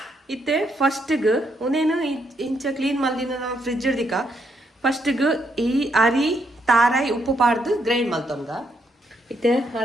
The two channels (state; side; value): normal; both; correlation 0.76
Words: ಇತ್ತೆ ಫಸ್ಟ್ಗೆ ಒಂದೇನು ಇಂಚ ಕ್ಲೀನ್ ಮಲ್ದಿನ ನಾವು ಫ್ರಿಜ್ ಹಿಡ್ದಿಕ ಫಸ್ಟ್ಗೆ ಈ ಅರಿ ತಾರಾಯಿ ಉಪ್ಪು ಪಾಡ್ದು ಗ್ರೈಂಡ್ ಮಲ್ತೊಂಗ ಇತ್ತೆ